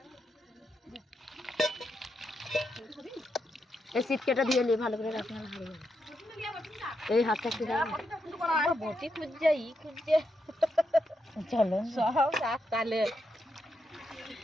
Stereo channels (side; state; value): both; normal; correlation 0.82